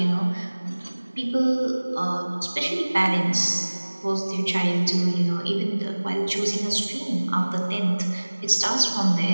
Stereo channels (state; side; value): inverted; both; correlation -1.00